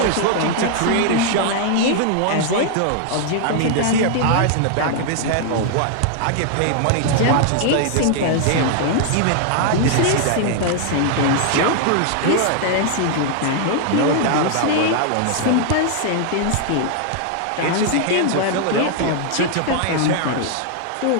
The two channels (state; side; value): different; both; correlation 0.00